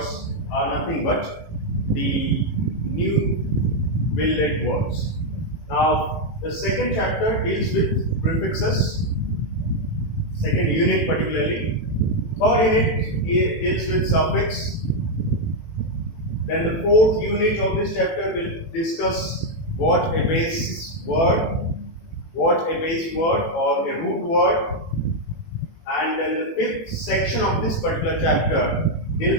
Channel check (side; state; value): right; late; 18 ms